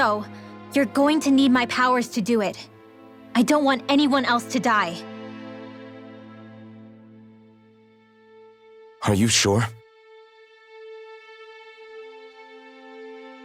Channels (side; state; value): both; identical; correlation 1.00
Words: you're going to need my powers to do it. I don't want anyone else to die. Are you sure?